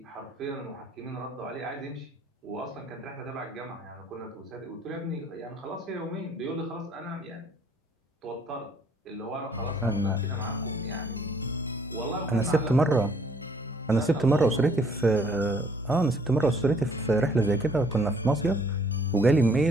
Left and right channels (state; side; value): normal; both; correlation 0.61